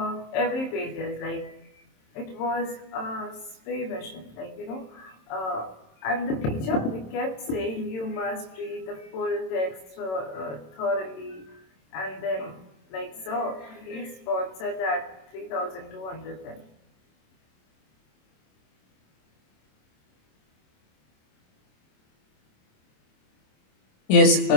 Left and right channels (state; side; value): late; right; 27 ms